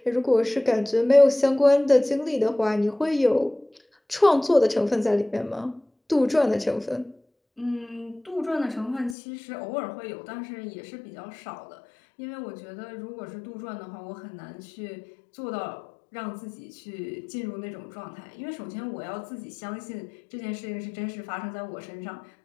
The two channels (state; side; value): drops out; right; at 9.2 s